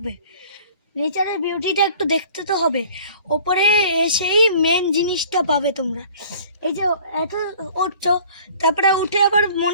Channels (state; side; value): inverted; both; correlation -0.49